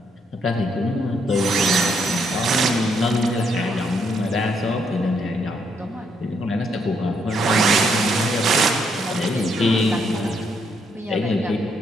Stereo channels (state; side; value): normal; both; correlation 0.74